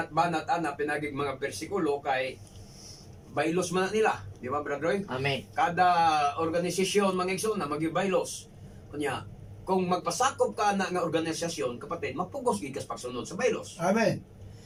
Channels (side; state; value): both; identical; correlation 1.00